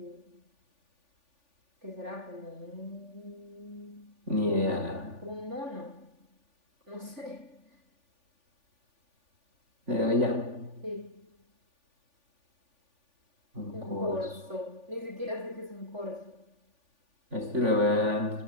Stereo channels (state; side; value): late; left; 3.5 ms